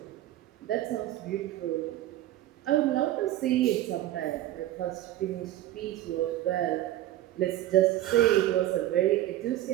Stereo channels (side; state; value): left; quieter; 14.0 dB